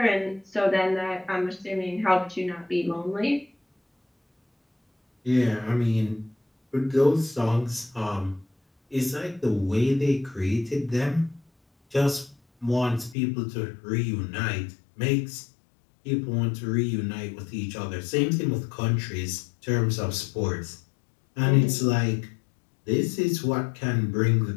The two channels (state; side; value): drops out; right; at 13.2 s